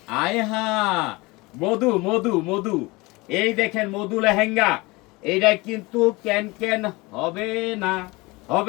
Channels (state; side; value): quieter; right; 23.7 dB